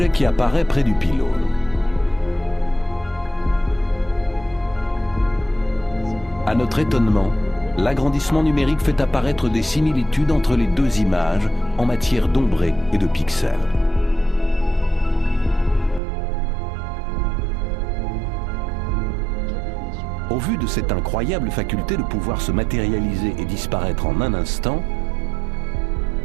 qui apparaît près du pylône. À notre étonnement, l'agrandissement numérique fait apparaître des similitudes entre les deux images en matière d'ombré et de pixels. Au vu de cette incroyable faculté de pouvoir se matérialiser et disparaître en un instant,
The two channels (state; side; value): drops out; left; at 16.0 s